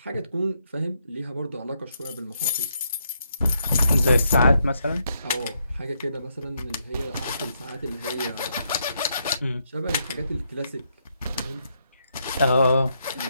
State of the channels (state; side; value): inverted; both; correlation -0.78